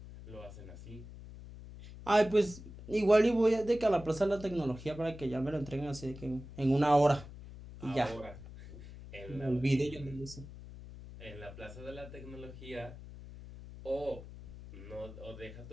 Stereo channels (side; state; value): left; noise; hum, 14 dB below the sound